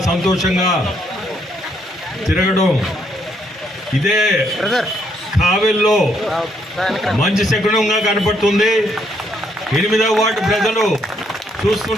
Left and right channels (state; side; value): normal; both; correlation 0.73